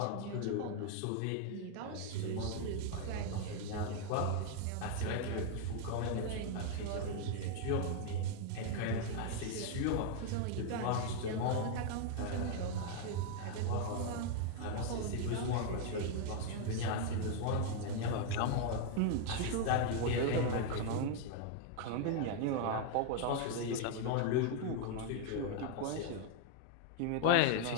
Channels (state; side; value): different; both; correlation 0.00